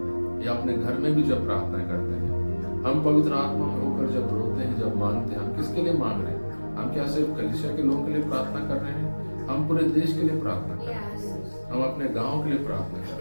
या अपने घर में भी जब प्रार्थनाएं करते हैं, हम पवित्र आत्मा में होकर जब रोते हैं, जब मांगते हैं, हम किसके लिए मांग रहे हैं? हम क्या सिर्फ कलीसिया के लोगों के लिए प्रार्थना कर रहे हैं? हम पूरे देश के लिए प्रार्थना कर रहे हैं, हम अपने गाँव के लिए प्रार्थना कर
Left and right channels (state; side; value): inverted; both; correlation -1.00